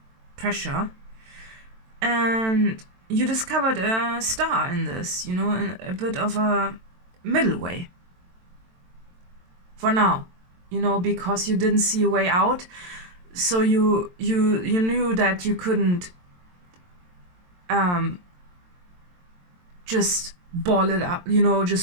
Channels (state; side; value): late; left; 22 ms